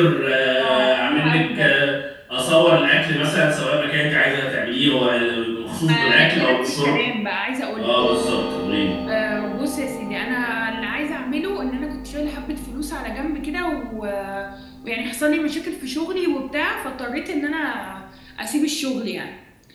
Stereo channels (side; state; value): both; identical; correlation 1.00